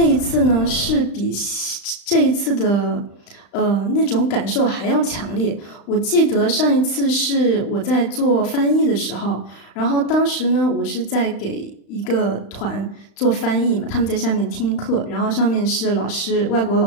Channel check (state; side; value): late; right; 35 ms